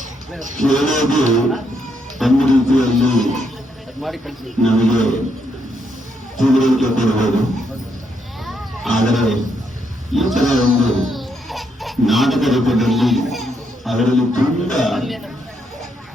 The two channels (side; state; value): both; normal; correlation 0.77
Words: ಕೇಳೋದು ಒಂದು ರೀತಿಯಲ್ಲಿ ನಮಗೆ ತಿಳುವಳಿಕೆ ಕೊಡಬಹುದು. ಆದರೆ ಈ ತರ ಒಂದು ನಾಟಕ ರೂಪದಲ್ಲಿ ಅದರಲ್ಲಿ ತುಂಬಾ